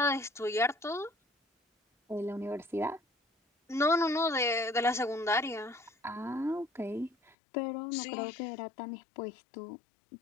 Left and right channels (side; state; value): right; drops out; at 7.4 s